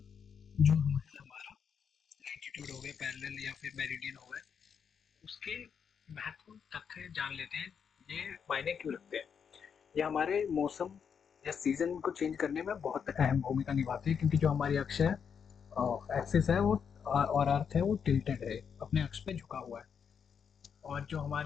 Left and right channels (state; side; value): quieter; right; 7.0 dB